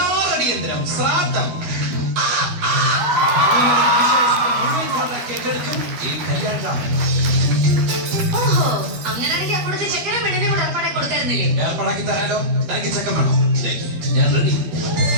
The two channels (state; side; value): late; left; 12 ms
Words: അടിയന്തരം, ശ്രാദ്ധം. കേക്കെടുക്കും ഈ കല്യാണം. ഏർപ്പാടാക്കി തരാലോ. തനിക്ക് ചെക്കൻ വേണോ? ഞാൻ റെഡി.